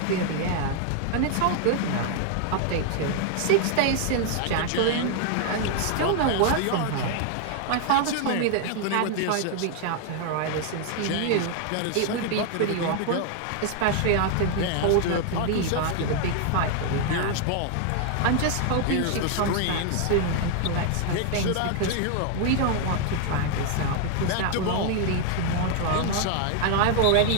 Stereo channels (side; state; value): both; different; correlation 0.00